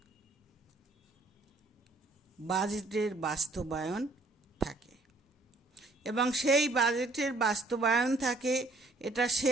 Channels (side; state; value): left; quieter; 3.1 dB